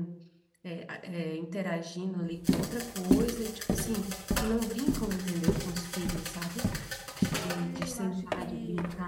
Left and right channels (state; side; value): identical; both; correlation 1.00